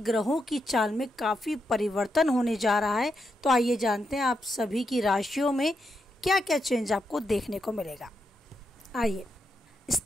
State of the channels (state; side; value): normal; both; correlation 0.83